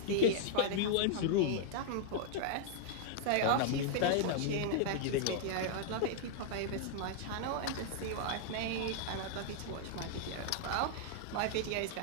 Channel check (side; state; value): both; different; correlation -0.01